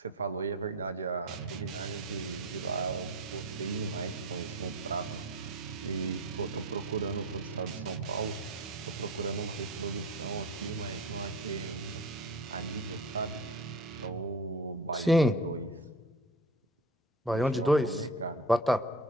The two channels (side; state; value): both; normal; correlation 0.33